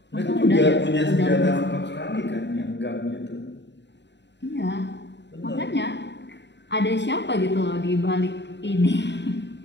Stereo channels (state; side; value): late; right; 0.51 ms